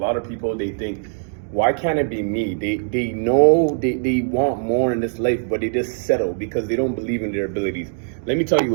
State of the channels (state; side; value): silent; left; digital silence